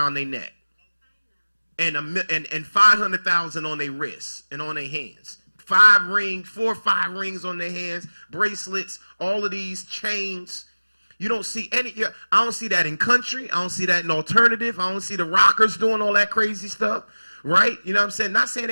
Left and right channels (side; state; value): both; inverted; correlation -1.00